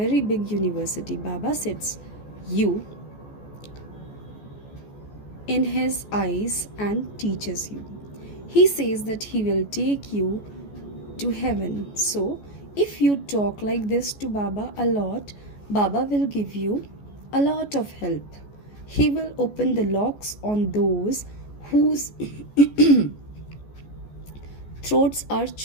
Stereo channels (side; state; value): right; late; 14 ms